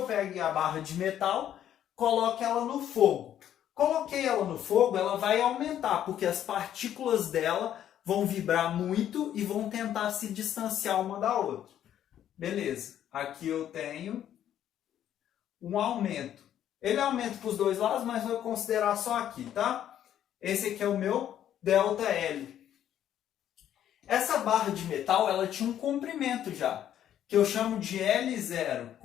pegue a barra de metal, coloque ela no fogo. Coloquei ela no fogo, ela vai aumentar, porque as partículas dela vão vibrar muito e vão tentar se distanciar uma da outra. Beleza, aqui eu tenho um aumento. Ele aumenta para os dois lados, mas vou considerar só aqui, tá? Esse aqui é o meu ΔL. Essa barra de metal, ela tinha um comprimento já, que eu chamo de L0,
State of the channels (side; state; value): right; quieter; 10.7 dB